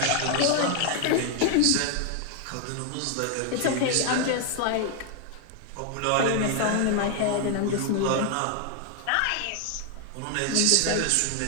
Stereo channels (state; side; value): different; both; correlation 0.00